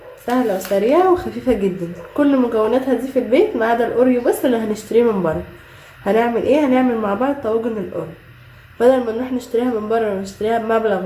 سهلة وسريعة وخفيفة جدا. كل مكوناتها دي في البيت ما عدا الاوريو بس اللي هنشتريه من بره. هنعمل ايه؟ هنعمل مع بعض طواجن الاوريو. بدل ما نروح نشتريها من بره ونشتريها بمبلغ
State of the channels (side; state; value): both; identical; correlation 1.00